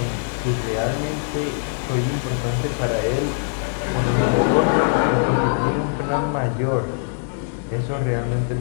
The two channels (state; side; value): silent; right; digital silence